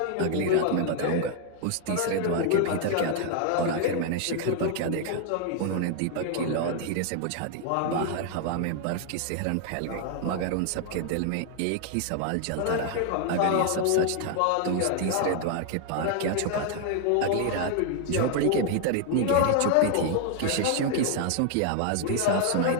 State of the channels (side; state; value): both; different; correlation 0.00